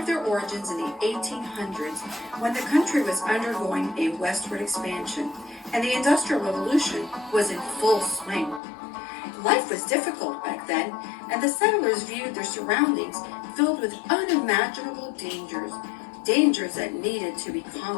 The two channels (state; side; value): drops out; right; at 8.6 s